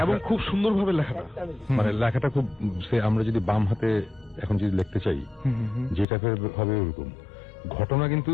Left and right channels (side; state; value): right; drops out; at 6.1 s